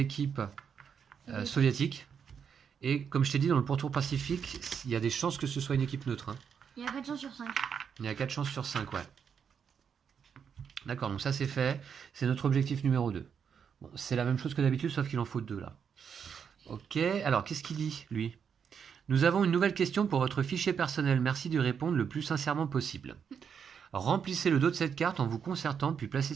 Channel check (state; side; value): quieter; left; 7.1 dB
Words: soviétiques. Et comme je t'ai dit, dans le pourtour pacifique, il y a des chances que ce soit une équipe neutre, hein. Il y a 4 chances sur 5. Il y a 4 chances sur 5, ouais. D'accord, donc ça c'est fait. C'est notre objectif numéro 2. Bon, c'est la même chose que d'habitude, sauf qu'il en faut 2 là. Ok, alors qu'est-ce qu'il dit, lui? Nous avons une nouvelle question pour votre fichier personnel. Merci d'y répondre le plus sincèrement possible. Remplissez le dos de cette carte en vous concertant, puis placez